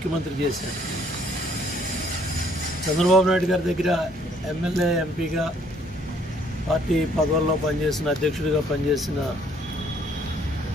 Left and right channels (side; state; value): both; normal; correlation 0.63